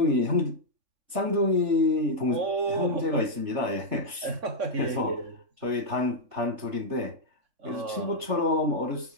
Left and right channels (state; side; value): late; left; 3.3 ms